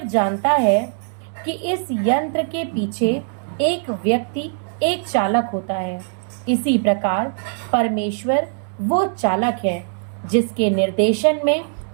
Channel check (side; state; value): left; silent; digital silence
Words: जानता है कि इस यंत्र के पीछे एक व्यक्ति, एक चालक होता है। इसी प्रकार परमेश्वर वो चालक है जिसके निर्देशन में